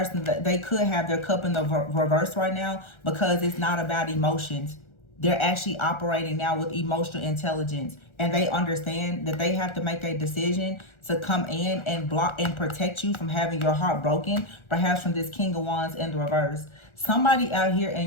they could have their cup in the reverse right now because it's not about emotions. They're actually operating now with emotional intelligence. And they understand that they have to make a decision to come in and block and protect you from having your heart broken, perhaps from this King of Wands in the reverse. Somebody out here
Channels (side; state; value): right; late; 1.4 ms